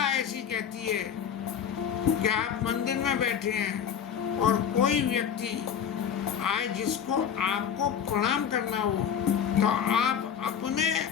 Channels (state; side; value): quieter; right; 8.2 dB